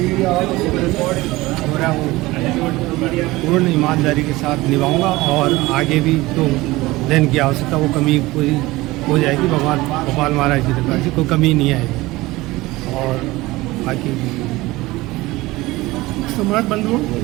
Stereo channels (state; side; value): quieter; left; 19.8 dB